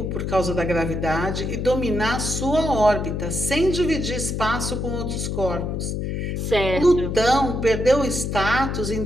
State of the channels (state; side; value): noise; left; hum, 2 dB below the sound